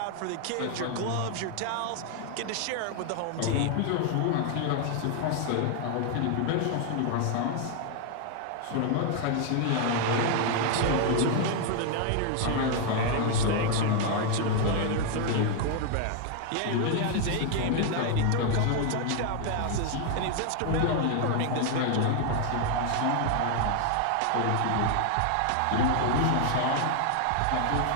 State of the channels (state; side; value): different; both; correlation 0.00